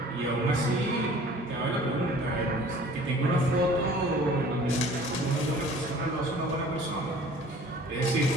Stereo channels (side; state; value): both; normal; correlation 0.49